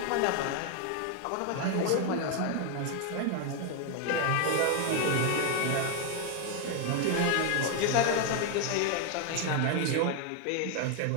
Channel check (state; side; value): different; both; correlation 0.01